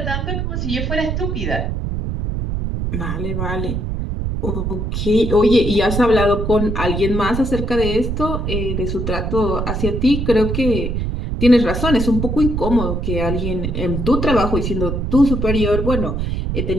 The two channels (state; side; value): noise; right; rumble, 2 dB below the sound